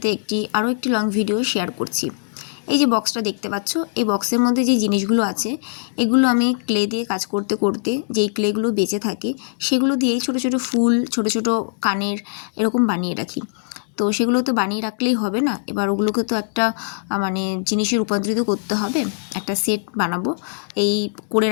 আরও একটি লং ভিডিও শেয়ার করছি। এই যে বক্সটা দেখতে পাচ্ছ, এই বক্সের মধ্যে যে জিনিসগুলো আছে এগুলো আমি ক্লে দিয়ে কাজ করতে করতে যেই ক্লেগুলো বেঁচে থাকে সেগুলো দিয়েই ছোট ছোট ফুল, ছোট ছোট কানের এরকম বানিয়ে রাখি। তো সেগুলো তো বানিয়ে রাখলেই হবে না, এবার ওগুলোকে তো একটা জিনিসে রূপান্তরিত করতে হবে, একটা সেট বানাবো এই করে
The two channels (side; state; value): right; silent; digital silence